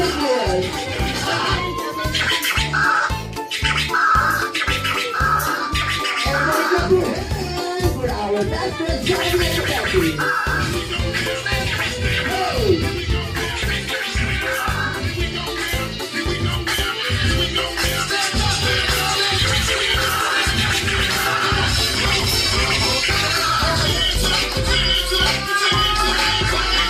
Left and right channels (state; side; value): identical; both; correlation 1.00